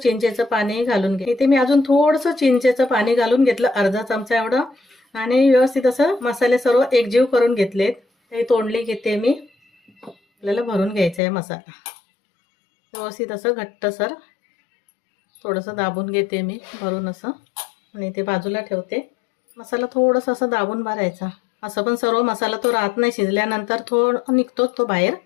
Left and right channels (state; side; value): drops out; right; at 11.2 s